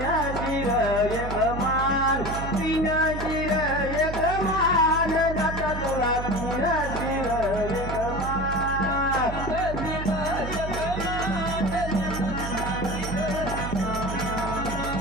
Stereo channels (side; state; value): right; noise; hum, 6 dB below the sound